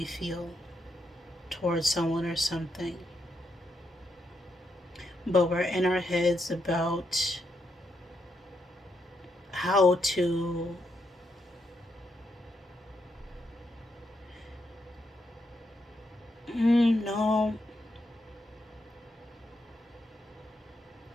feel towards someone or something. But we're in our heads about how to no.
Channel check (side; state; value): both; normal; correlation 0.80